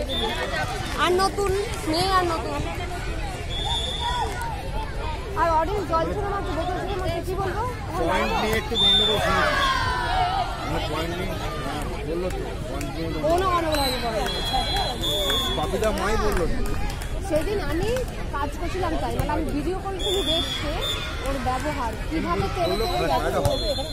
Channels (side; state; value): both; identical; correlation 1.00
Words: আর নতুন মেয়ে আর নতুন আর অডিয়েন্স জল ছেড়ে মারছে, বোতল ছেড়ে মারছে, কি বলবো? পয়েন্ট নিয়ে একটু গন্ডগোল বাপিদা মাই বললো সেদিন আমি কাজ করছিলাম, তাই মানে আমি ভিডিও কল থেকে দেখছে ওর ব্যবহার কিভাবে